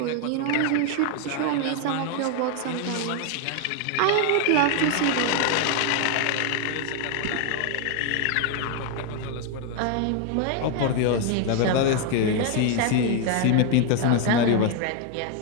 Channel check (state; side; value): different; both; correlation 0.01